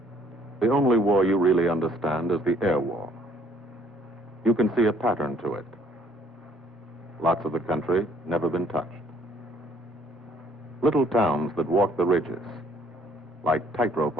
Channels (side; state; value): both; normal; correlation 0.62